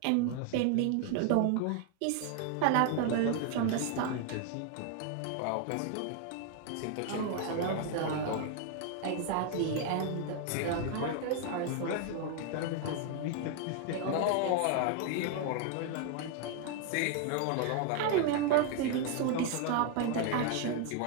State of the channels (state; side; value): different; both; correlation 0.00